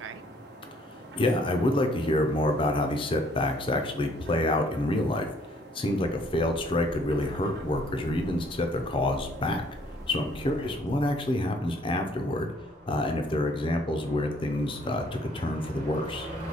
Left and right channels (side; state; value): both; normal; correlation 0.62